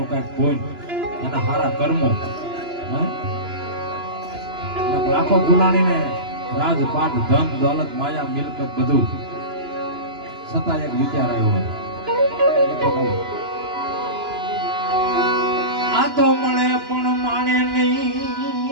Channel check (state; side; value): late; left; 2.9 ms